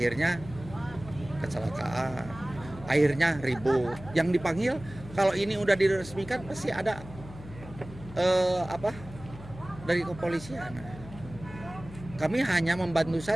kecelakaan, akhirnya ribut. Yang dipanggil kalau ini udah diresmikan pasti ada dari kepolisian. Kami hanya membantu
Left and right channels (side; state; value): left; noise; hum, 15 dB below the sound